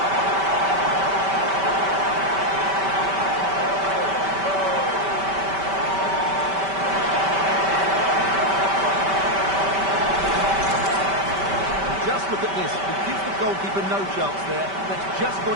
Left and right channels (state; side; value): late; left; 5.1 ms